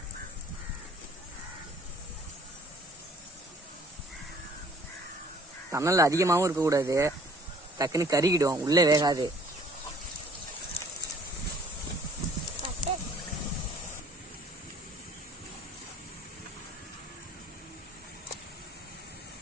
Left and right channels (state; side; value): normal; both; correlation 0.54